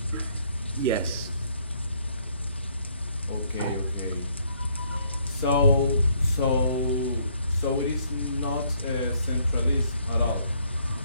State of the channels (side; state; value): both; inverted; correlation -0.67